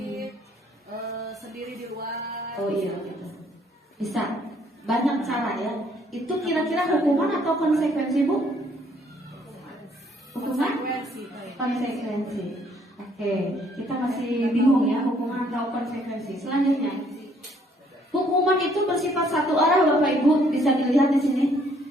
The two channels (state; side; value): normal; both; correlation 0.65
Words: sendiri di luar. Oh iya gitu. Bisa. Banyak cara ya. Itu kira-kira hukuman atau konsekuensi Bu? Hukuman? Konsekuensi. Oke, kita masih bingung ya hukuman atau konsekuensi. Selanjutnya, hukuman itu bersifat satu arah Bapak Ibu, bisa dilihat di sini.